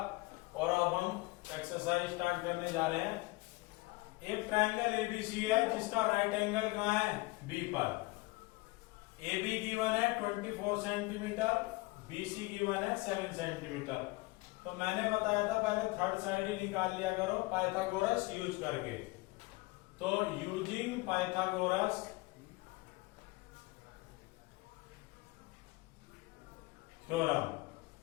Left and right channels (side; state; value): right; quieter; 23.0 dB